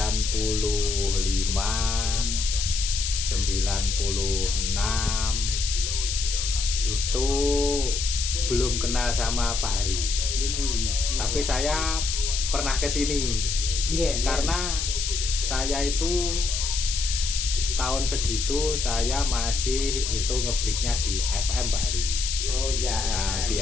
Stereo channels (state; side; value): noise; left; hiss, 2 dB below the sound